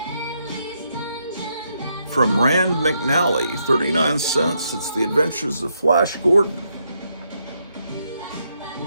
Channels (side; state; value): both; inverted; correlation -0.78